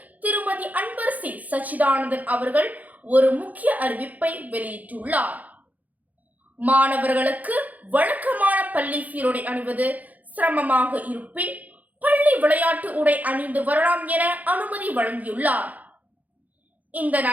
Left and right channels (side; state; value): left; late; 0.078 ms